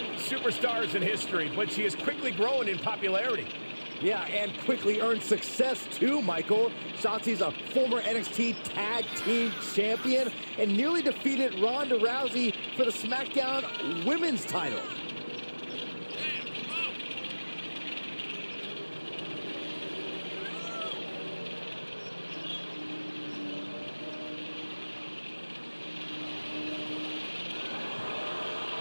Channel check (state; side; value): inverted; both; correlation -1.00